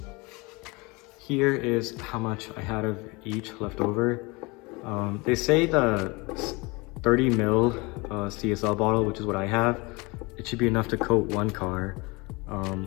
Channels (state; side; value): quieter; right; 25.7 dB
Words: here is how much I had of each left over. They say the 30 ml CSL bottle, which is what I have, it should be enough to coat one car.